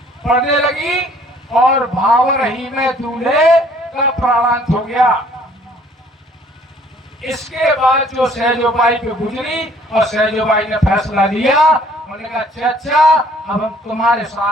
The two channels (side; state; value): both; normal; correlation 0.58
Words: पढ़ने लगी और भावर ही में दूल्हे का प्राणांत हो गया। इसके बाद जो सहजोबाई पे गुजरी और सहजोबाई ने फैसला लिया, उन्होंने कहा अच्छा अब हम तुम्हारे